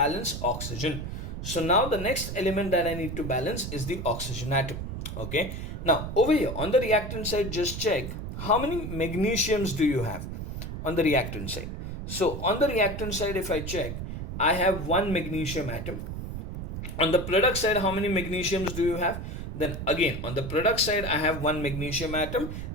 oxygen. So now the next element that I need to balance is the oxygen atom. Okay, now over here on the reactant side, just check how many magnesiums do you have on the reactant side. So on the reactant side, if I check, I have one magnesium atom. On the product side, how many magnesiums do you have? Then again, on the product side, I have one magnesium atom.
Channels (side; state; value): right; noise; rumble, 6 dB below the sound